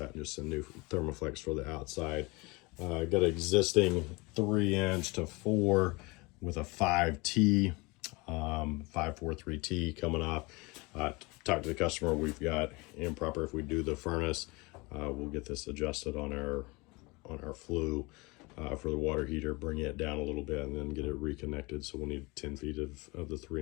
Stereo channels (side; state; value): right; quieter; 25.4 dB